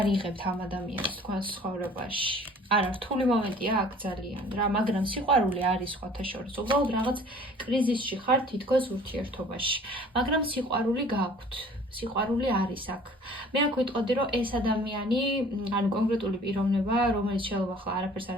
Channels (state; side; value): normal; both; correlation 0.50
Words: იღებთ ამ ადამიანს თქვენს ცხოვრებაში. არა, რთული მომენტია აქ ძალიან რა, მაგრამ სიყვარული არის სხვათა შორის. უბრალოდ რაღაც კრიზისში ხართ თითქოს ურთიერთობაში, მაგრამ სიყვარული გაქვთ. სიყვარული არის აქ. მე აქ ვიტყოდი, რომ ეს ადამიანი, ანუ კონკრეტული პიროვნება, რომელიც შეიძლება ახლა არაფერს არ